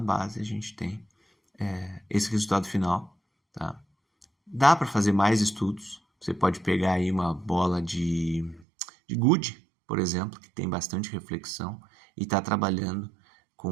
a gente tem esse resultado final, tá? Dá para fazer mais estudos, você pode pegar aí uma bola de gude, por exemplo, que tem bastante reflexão e está trabalhando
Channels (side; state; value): left; drops out; at 8.7 s